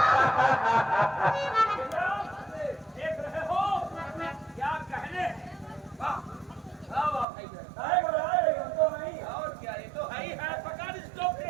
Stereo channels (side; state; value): left; drops out; at 7.2 s